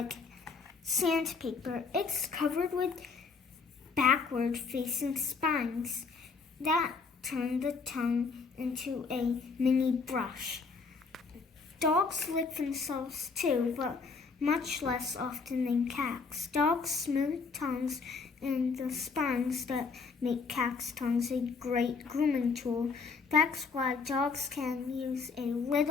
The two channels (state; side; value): quieter; right; 4.8 dB